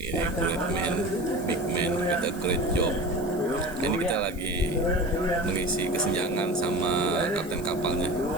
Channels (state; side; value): noise; right; hiss, 21 dB below the sound